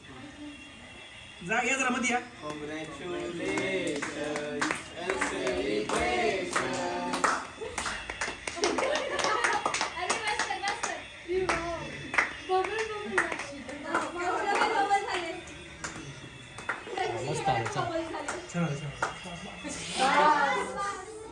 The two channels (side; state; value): both; identical; correlation 1.00